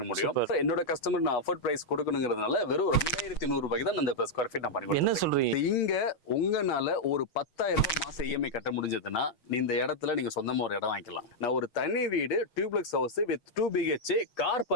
முடியும். என்னோட கஸ்டமர் நான் அஃபோர்ட் பிரைஸ் கொடுக்கணுங்கிறதுனால வெறும் 2100 ரூபாய்க்கு தான் அந்த ஸ்கொயர் ஃபீட் நான் பண்ணி. என்ன சொல்றீங்க? இங்க உங்கனால ஒரு 10,000 ரூபாய் மாசம் இஎம்ஐ கட்ட முடிஞ்சதுன்னா இந்த இடத்துல நீங்க சொந்தமா ஒரு இடம் வாங்கிக்கலாம். நான் ஒரு தனி வீடு duplex house with 2 BHK car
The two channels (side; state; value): right; late; 6.4 ms